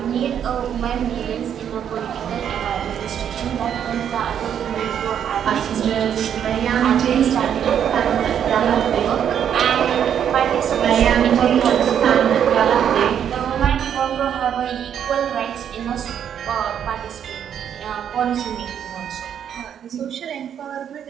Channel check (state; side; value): quieter; left; 8.9 dB